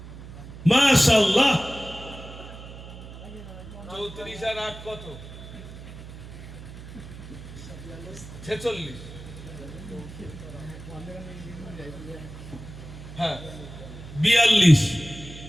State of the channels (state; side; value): noise; right; hum, 14 dB below the sound